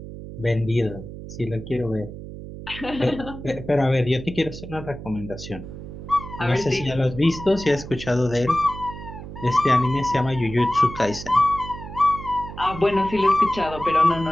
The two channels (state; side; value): noise; right; hum, 12 dB below the sound